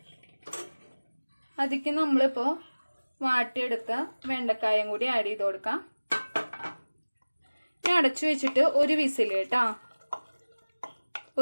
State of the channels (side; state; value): both; inverted; correlation -1.00